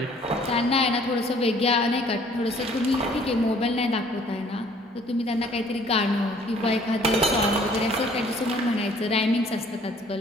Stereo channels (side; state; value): both; normal; correlation 0.57